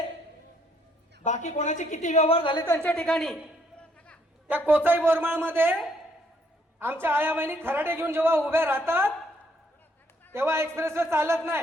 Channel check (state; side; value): normal; both; correlation 0.69